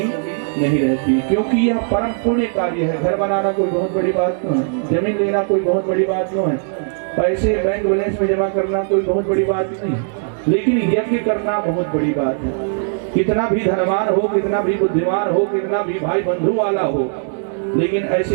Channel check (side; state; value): left; silent; digital silence